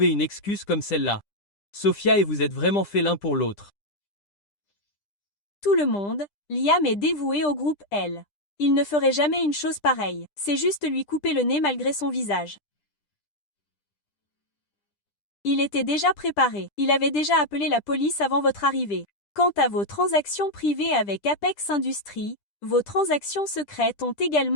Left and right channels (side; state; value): right; late; 10 ms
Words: une excuse comme celle-là. Sophia et vous êtes vraiment faits l'un pour l'autre. Tout le monde, Liam est dévoué au groupe L. Il ne ferait jamais une chose pareille. C'est juste lui couper le nez malgré son visage. Il était déjà préparé. Il avait déjà appelé la police avant votre arrivée. Quant à vos transactions privées avec Apex Industries, vos transactions secrètes ont